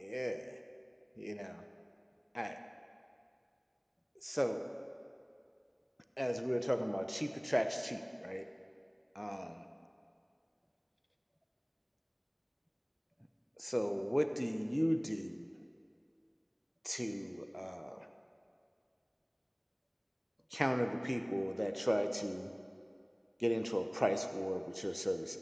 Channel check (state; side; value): identical; both; correlation 1.00